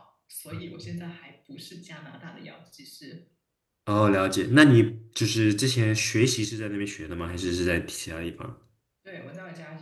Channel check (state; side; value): identical; both; correlation 1.00